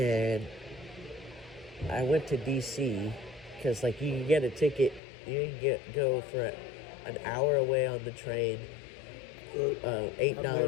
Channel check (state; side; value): drops out; right; at 5.0 s